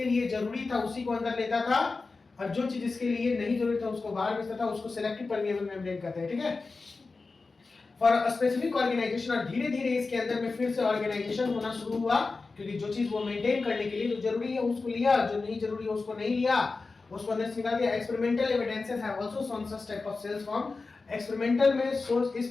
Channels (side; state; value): right; quieter; 4.0 dB